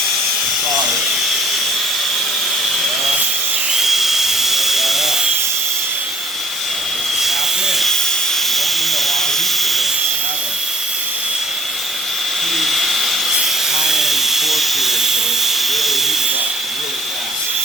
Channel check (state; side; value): normal; both; correlation 0.57